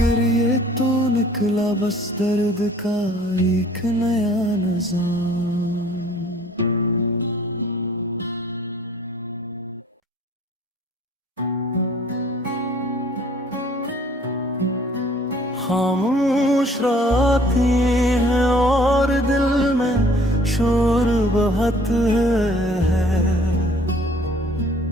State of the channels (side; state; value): both; normal; correlation 0.55